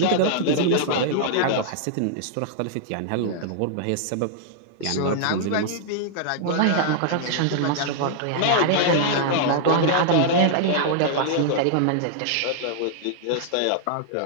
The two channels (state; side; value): different; both; correlation -0.01